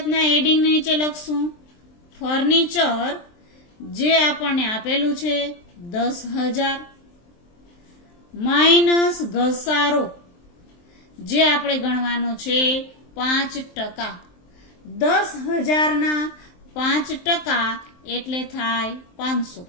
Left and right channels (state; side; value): late; right; 23 ms